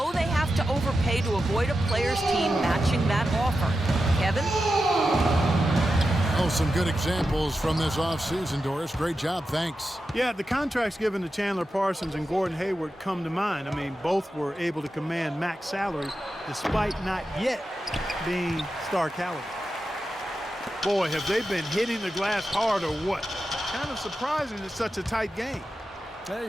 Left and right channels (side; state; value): both; normal; correlation 0.90